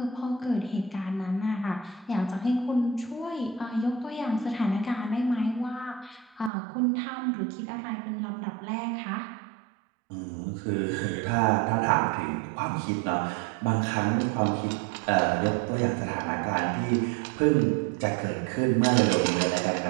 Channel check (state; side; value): drops out; left; at 6.5 s